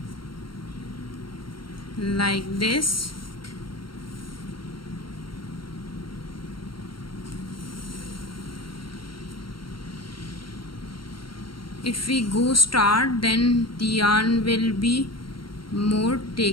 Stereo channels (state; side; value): late; right; 0.73 ms